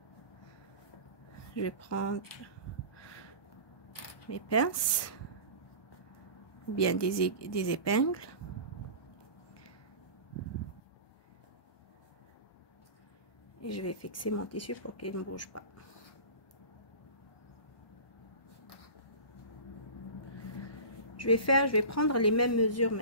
Je vais prendre mes pinces. Ou bien des épingles. Et je vais fixer mon tissu pour qu'il ne bouge pas. Je vais prendre les mêmes mesures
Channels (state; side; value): late; right; 1.2 ms